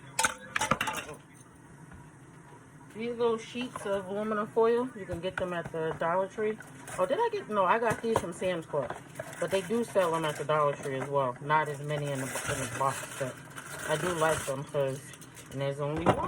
These little sheets of aluminum foil, you can get them at the Dollar Tree. Oh, did I get, no, I got these from Sam's Club. But they do sell them at the Dollar Tree as well. Not as many in the box, but I do like them because, and there's only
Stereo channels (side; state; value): both; identical; correlation 1.00